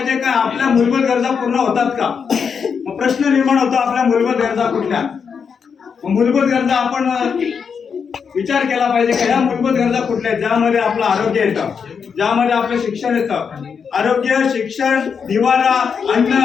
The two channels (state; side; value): quieter; right; 6.3 dB